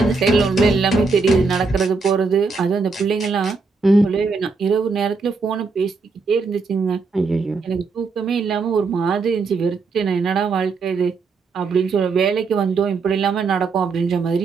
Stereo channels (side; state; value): left; quieter; 4.4 dB